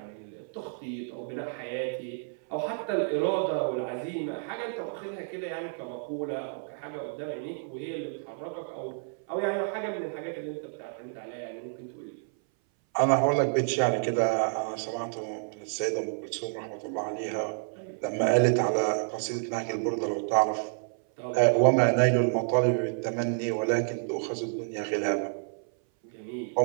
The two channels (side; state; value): left; silent; 58 dB below the other